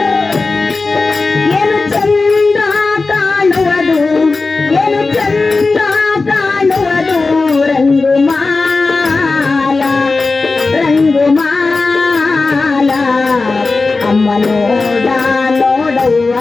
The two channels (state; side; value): quieter; right; 3.8 dB